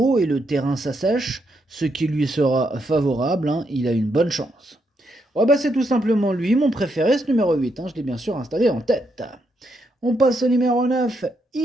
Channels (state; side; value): normal; both; correlation 0.79